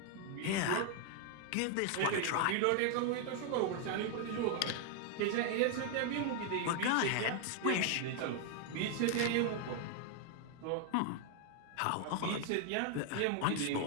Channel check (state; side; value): different; both; correlation 0.00